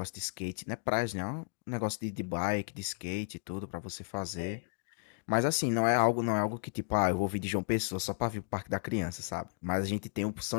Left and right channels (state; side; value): silent; right; digital silence